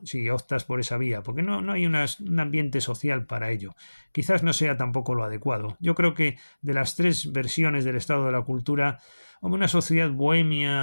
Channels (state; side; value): inverted; both; correlation -1.00